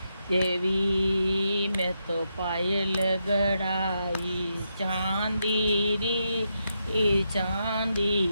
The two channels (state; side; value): inverted; both; correlation -0.84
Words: मैं तो पायल गड़ाई चांदीरी